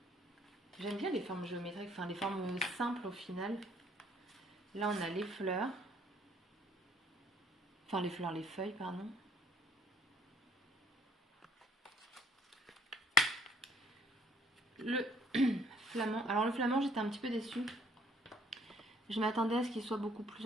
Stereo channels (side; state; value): both; normal; correlation 0.61